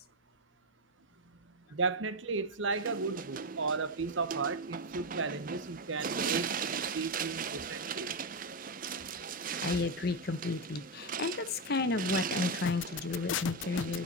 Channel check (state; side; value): normal; both; correlation 0.09